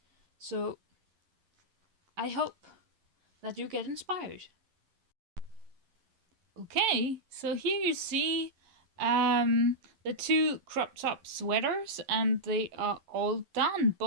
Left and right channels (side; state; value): left; late; 11 ms